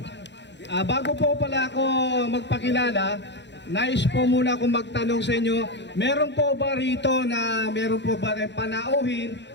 Bago po pala ako magpakilala, nais po muna akong magtanong sa inyo, meron po ba rito na meron po ba rin panauhin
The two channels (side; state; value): right; late; 0.52 ms